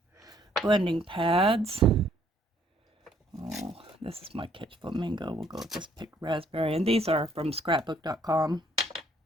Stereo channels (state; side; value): normal; both; correlation 0.64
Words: blending pads. Oh, this is my Kitsch Flamingo. We'll go with this picked raspberry, and these are from scrapbook.com.